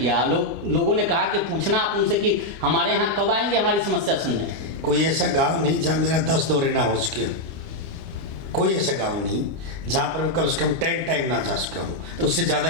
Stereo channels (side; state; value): left; late; 25 ms